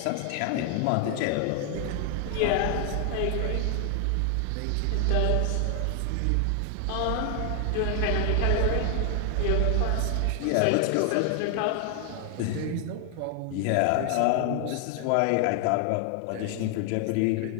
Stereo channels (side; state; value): both; different; correlation 0.00